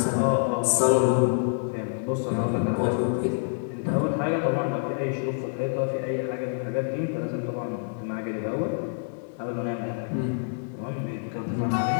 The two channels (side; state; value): right; silent; 60 dB below the other